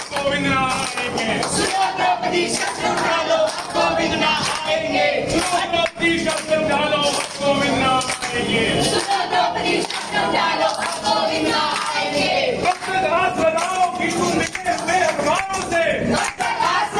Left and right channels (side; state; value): both; identical; correlation 1.00